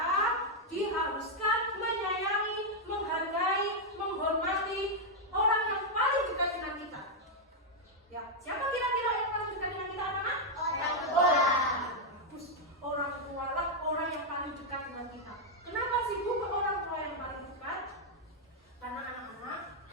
diharuskan menyayangi, menghargai, menghormati orang yang paling dekat dengan kita. Ya, siapa kira-kira yang paling dekat dengan kita, anak-anak? Orang tua. Orang tua lah orang yang paling dekat dengan kita. Kenapa sih Bu ke orang tua yang paling dekat? Karena anak-anak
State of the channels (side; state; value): both; normal; correlation -0.01